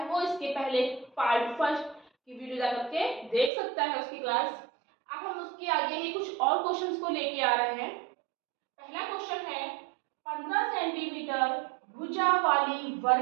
वो इसके पहले पार्ट फर्स्ट की वीडियो जा करके देख सकता है उसकी क्लास। अब हम उसके आगे ही कुछ और क्वेश्चंस को लेके आ रहे हैं। पहला क्वेश्चन है 15 सेंटीमीटर भुजा वाली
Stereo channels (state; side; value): drops out; left; at 3.5 s